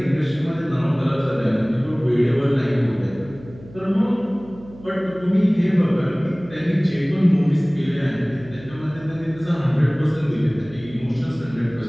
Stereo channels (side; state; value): right; noise; hum, 19 dB below the sound